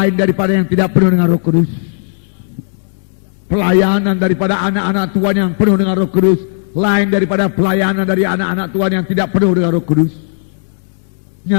daripada yang tidak penuh dengan Roh Kudus. Pelayanan daripada anak-anak Tuhan yang penuh dengan Roh Kudus lain daripada pelayanan dari anak-anak Tuhan yang tidak penuh dengan Roh Kudus.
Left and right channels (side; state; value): right; silent; digital silence